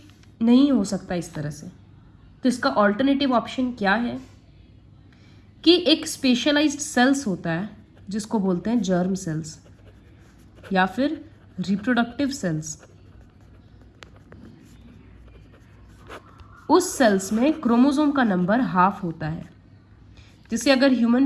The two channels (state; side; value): identical; both; correlation 1.00